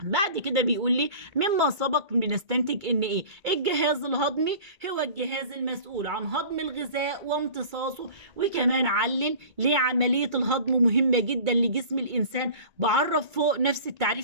بعد كده بيقول لي مما سبق بنستنتج ان ايه؟ الجهاز الهضمي هو الجهاز المسؤول عن هضم الغذاء وامتصاصه. وكمان علل ليه عملية الهضم مهمة جدا لجسم الانسان. بعرف فوق نفس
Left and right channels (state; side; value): late; left; 2.3 ms